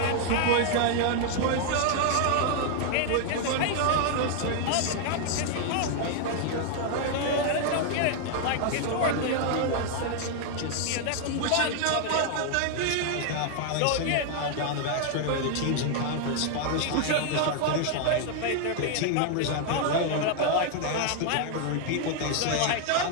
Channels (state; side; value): different; both; correlation 0.00